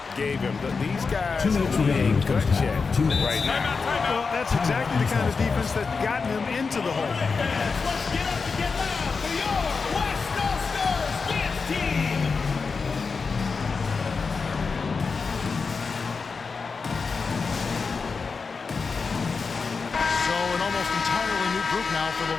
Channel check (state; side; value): quieter; right; 4.8 dB